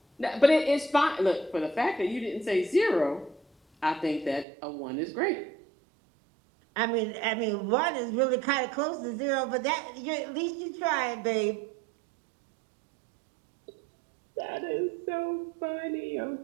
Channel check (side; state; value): left; drops out; at 4.5 s